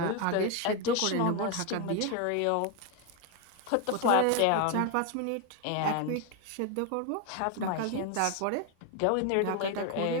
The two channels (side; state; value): both; different; correlation 0.01